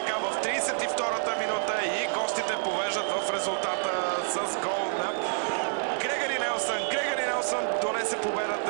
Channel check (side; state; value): left; silent; 56 dB below the other